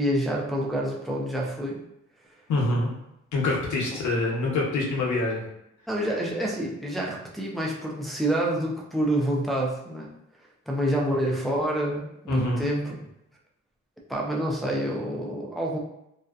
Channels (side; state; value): both; normal; correlation 0.58